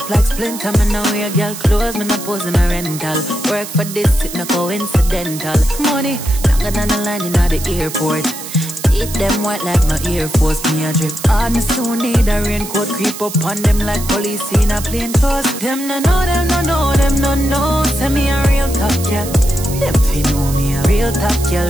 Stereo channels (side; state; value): right; noise; hiss, 10 dB below the sound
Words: like splinter. Me no wear girl clothes, me no pose in a rental. Work for this, it no coincidental. Money longer than the line in the airport. Eat them white like my Air Force. Me a drip hard, me soon need a raincoat. Creep up on them like police in a plain clothes. Them no know, them no know, them no know. Say me a real top girl. Them fi know me a real top